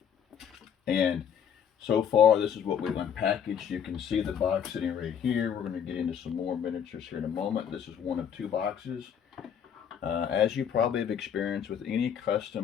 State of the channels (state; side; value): quieter; right; 8.2 dB